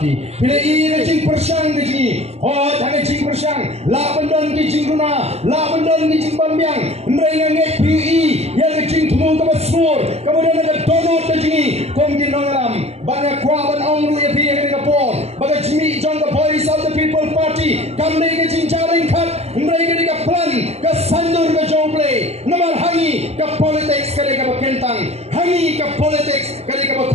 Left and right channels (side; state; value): left; late; 0.30 ms